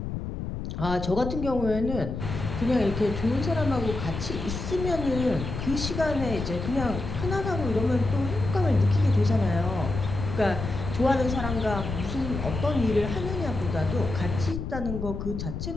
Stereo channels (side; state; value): left; noise; rumble, 5 dB below the sound